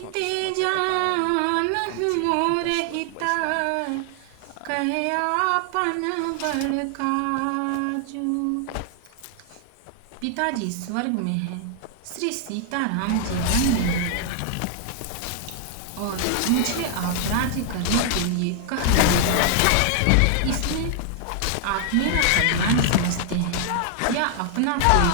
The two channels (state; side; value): different; both; correlation 0.00